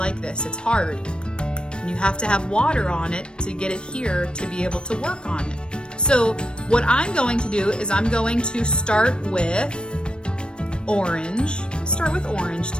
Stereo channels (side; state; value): right; late; 0.054 ms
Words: this. It's hard. And you have to have water on it to get it here to be able to work on it. So what I'm going to do is I'm going to start with orange. Start with orange